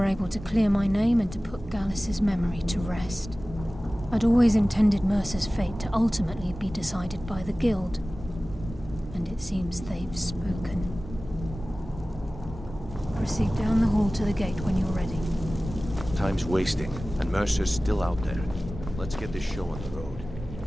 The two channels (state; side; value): normal; both; correlation 0.97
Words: able to clear my name and to put Gallus's memory to rest. I'd always intended Mercer's fate to ultimately be decided by the Guild, and it seems they've spoken. Proceed down the hall to the gate when you're ready. Time's wasting, and Mercer's still out there. Let's get this show on the road.